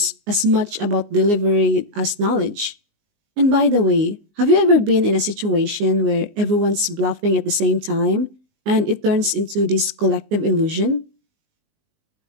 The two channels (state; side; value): late; left; 19 ms